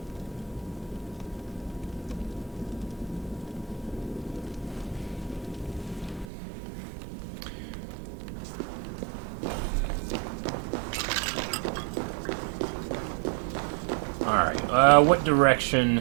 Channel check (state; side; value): drops out; left; at 6.2 s